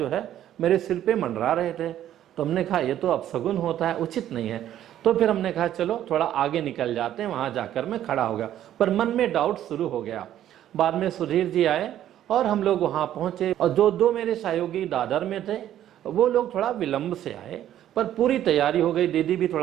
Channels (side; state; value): left; quieter; 11.7 dB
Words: है मेरे सिर पे मंडरा रहे थे। तो हमने कहा ये तो अपशगुन होता है, उचित नहीं है। तो फिर हमने कहा चलो थोड़ा आगे निकल जाते हैं, वहां जाकर मैं खड़ा हो गया। पर मन में डाउट शुरू हो गया। बाद में सुधीर जी आए और हम लोग वहां पहुंचे, और जो 2 मेरे सहयोगी दादर में थे वो लोग थोड़ा विलंब से आए, पर पूरी तैयारी हो गई। दीदी भी